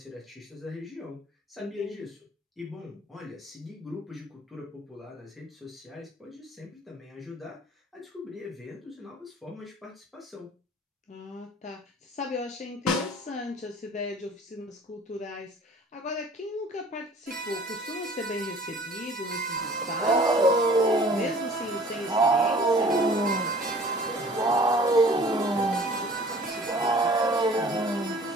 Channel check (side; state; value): both; normal; correlation 0.50